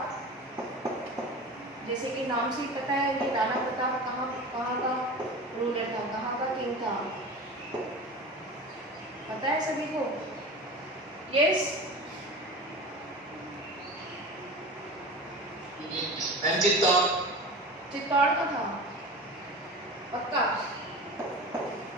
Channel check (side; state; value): both; normal; correlation 0.32